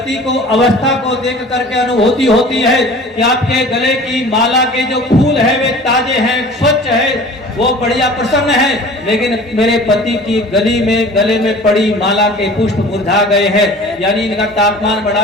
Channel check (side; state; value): both; normal; correlation 0.43